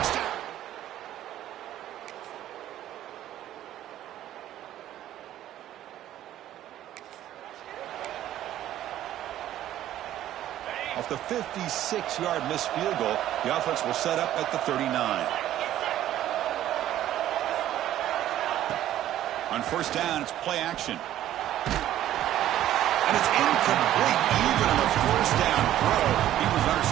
Off the 56-yard missed field goal, the offense will set up at the 39. On first down, it's play action. And it's incomplete. Even on the first down throw, he was under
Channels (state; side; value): quieter; left; 12.7 dB